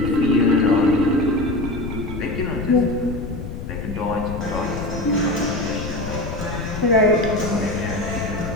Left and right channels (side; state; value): left; noise; rumble, 8 dB below the sound